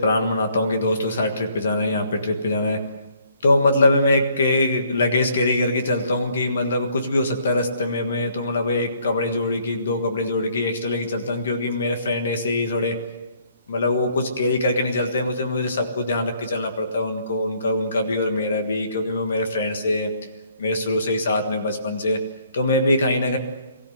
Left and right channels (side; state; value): both; inverted; correlation -0.65